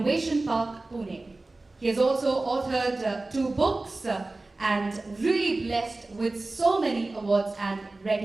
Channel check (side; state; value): left; quieter; 3.1 dB